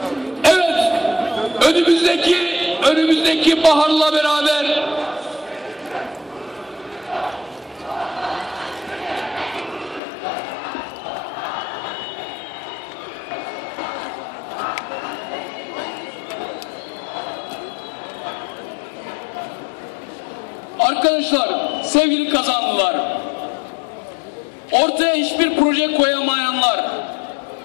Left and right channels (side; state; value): right; drops out; at 10.0 s